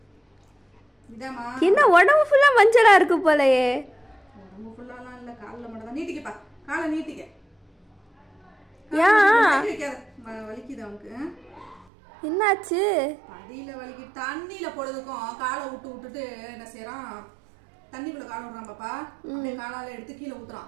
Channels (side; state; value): left; drops out; at 11.9 s